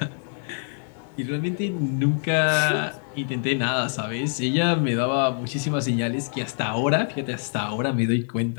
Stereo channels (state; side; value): silent; right; digital silence